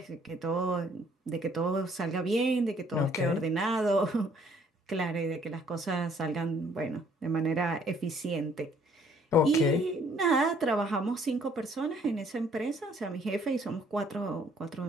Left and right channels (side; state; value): both; normal; correlation 0.62